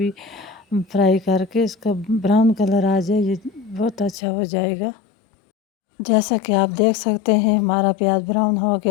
फ्राई करके इसका ब्राउन कलर आ जाए, ये बहुत अच्छा हो जाएगा। जैसा कि आप देख सकते हैं हमारा प्याज ब्राउन हो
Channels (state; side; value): drops out; right; at 4.2 s